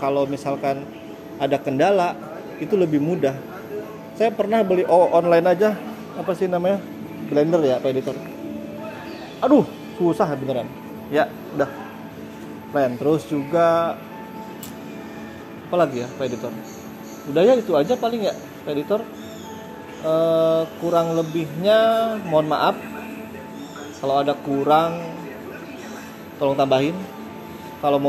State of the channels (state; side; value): identical; both; correlation 1.00